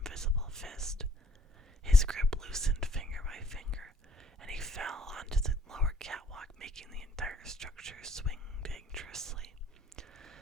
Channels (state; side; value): normal; both; correlation 0.61